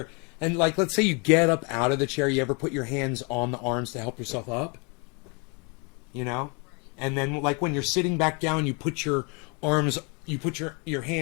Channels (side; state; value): right; quieter; 33.0 dB